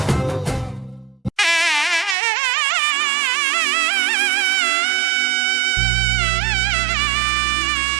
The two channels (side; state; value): left; drops out; at 2.1 s